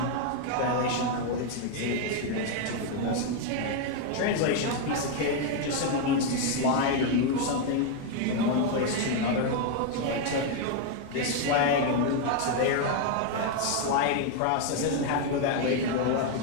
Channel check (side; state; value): both; different; correlation 0.01